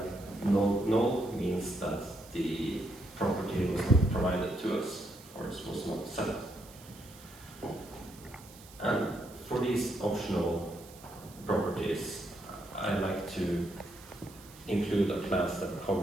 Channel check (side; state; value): right; noise; hiss, 21 dB below the sound